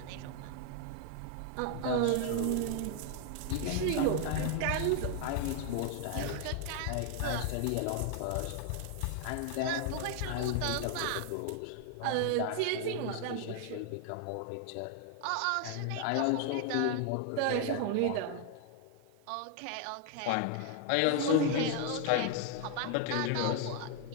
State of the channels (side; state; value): both; different; correlation 0.00